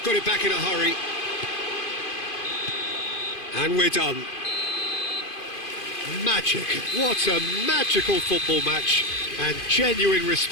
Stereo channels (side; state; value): right; late; 2.5 ms